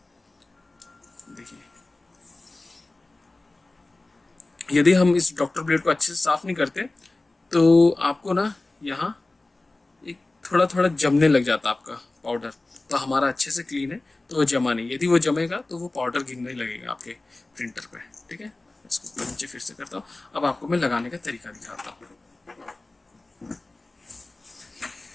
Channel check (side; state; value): right; quieter; 3.0 dB